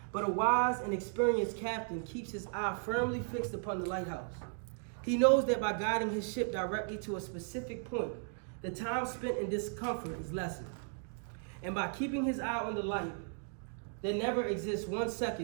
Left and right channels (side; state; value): left; silent; 54 dB below the other